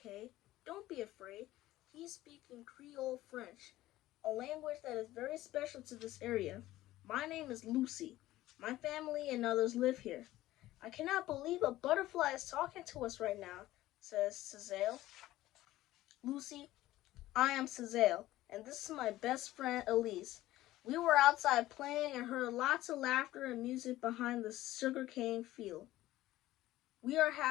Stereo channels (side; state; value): right; quieter; 15.8 dB